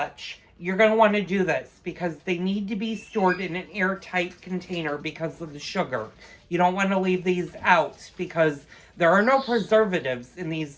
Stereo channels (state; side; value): identical; both; correlation 1.00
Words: You're going to want to do this because they need to be stored in an airtight container because of the sugar. You don't want to leave these out because there are no preservatives in these